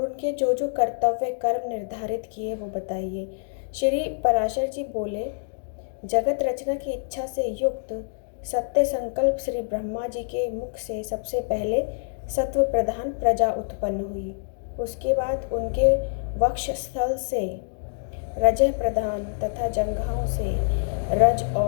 जो जो कर्तव्य कर्म निर्धारित किए वो बताइए। श्री पराशर जी बोले, जगत रचना की इच्छा से युक्त सत्य संकल्प श्री ब्रह्मा जी के मुख से सबसे पहले सत्व प्रधान प्रजा उत्पन्न हुई। उसके बाद उनके वक्षस्थल से रजह प्रधान तथा जंघाओं से रज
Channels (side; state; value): right; silent; digital silence